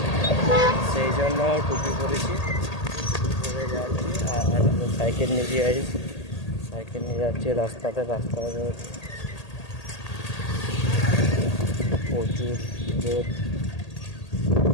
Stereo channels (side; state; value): right; late; 1.8 ms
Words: সেই জন্য টুপি পরেছি, টুপি পরে যাচ্ছি। আর সাইকেল নিয়ে গাইজ, সাইকেল নিয়ে যাচ্ছি রাস্তাতে প্রচুর রোদ,